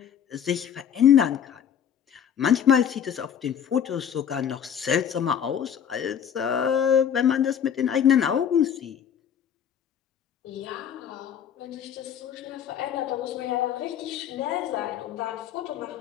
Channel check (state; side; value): quieter; right; 8.8 dB